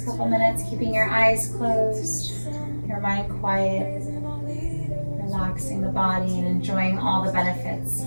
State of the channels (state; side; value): inverted; both; correlation -1.00